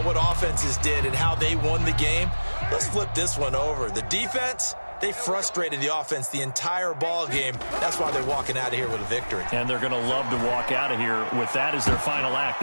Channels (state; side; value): inverted; both; correlation -1.00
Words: what offenses did and how they won the game. Let's flip this one over. The defense, they frustrated the offense the entire ball game. That's why they're walking out of here with a victory. And they're going to love to walk out of here with that as their final act.